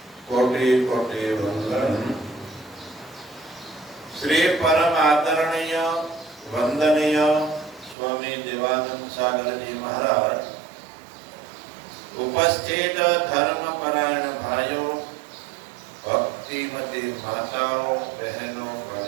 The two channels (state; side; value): drops out; left; at 8.0 s